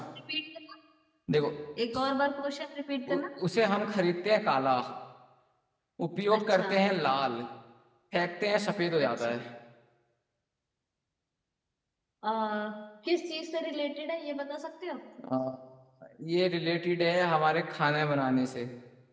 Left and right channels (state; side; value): identical; both; correlation 1.00